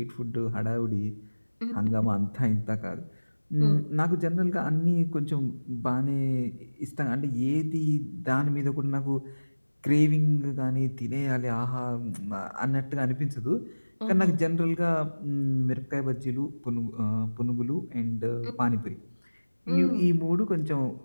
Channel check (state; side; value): inverted; both; correlation -1.00